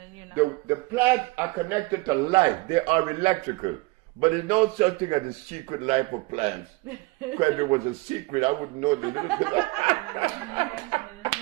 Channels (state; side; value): quieter; left; 24.1 dB